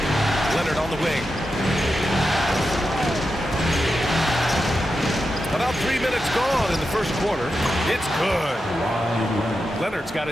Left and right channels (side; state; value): both; normal; correlation 0.89